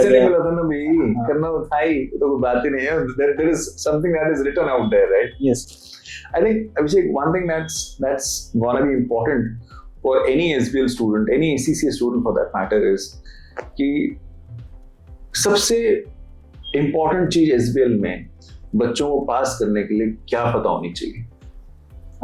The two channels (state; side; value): identical; both; correlation 1.00